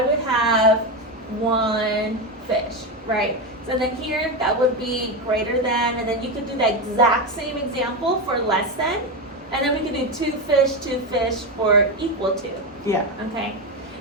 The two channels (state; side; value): normal; both; correlation 0.13